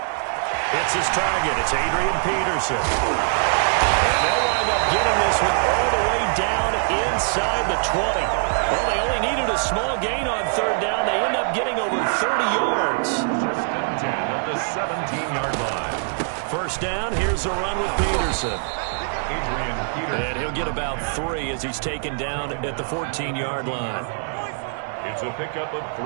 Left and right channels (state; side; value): silent; left; 63 dB below the other